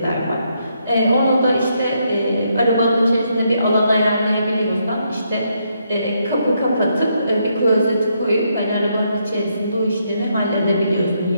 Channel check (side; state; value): both; inverted; correlation -0.77